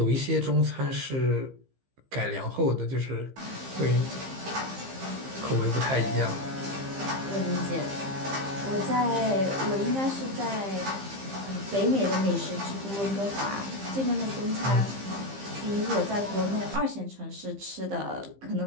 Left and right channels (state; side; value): late; left; 15 ms